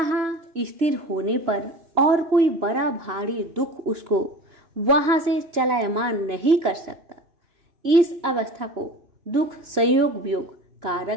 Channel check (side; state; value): left; late; 2.9 ms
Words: स्थिर होने पर और कोई बड़ा भारी दुख उसको वहां से चलायमान नहीं कर सकता। इस अवस्था को दुख संयोग वियोग